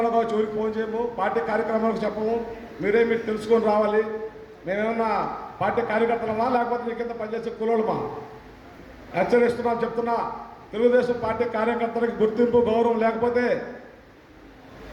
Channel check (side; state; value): both; identical; correlation 1.00